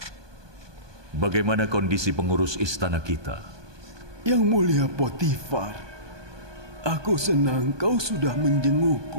Bagaimana kondisi pengurus istana kita? Yang mulia Potifar, aku senang kau sudah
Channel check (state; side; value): late; left; 1.2 ms